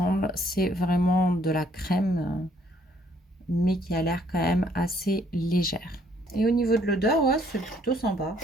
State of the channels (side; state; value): both; normal; correlation 0.65